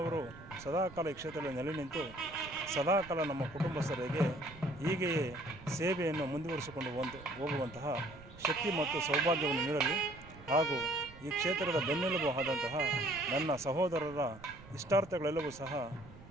ಸದಾಕಾಲ ಈ ಕ್ಷೇತ್ರದಲ್ಲಿ ನೆಲೆ ನಿಂತು ಸದಾಕಾಲ ನಮ್ಮ ಕುಟುಂಬಸ್ಥರಿಗೆ ಹೀಗೆಯೇ ಸೇವೆಯನ್ನು ಮುಂದುವರಿಸಿಕೊಂಡು ಹೋಗುವಂತಹ ಶಕ್ತಿ ಮತ್ತು ಸೌಭಾಗ್ಯವನ್ನು ನೀಡಲಿ ಹಾಗೂ ಈ ಕ್ಷೇತ್ರದ ಬೆನ್ನೆಲುಬು ಆದಂತಹ ನನ್ನ ಸಹೋದರರ ಇಷ್ಟಾರ್ಥಗಳೆಲ್ಲವೂ ಸಹ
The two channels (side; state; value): right; noise; rumble, 18 dB below the sound